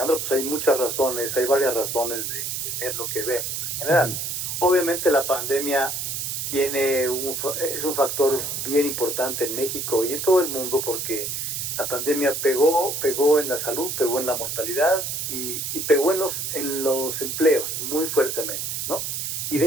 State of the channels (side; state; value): right; noise; hiss, 3 dB below the sound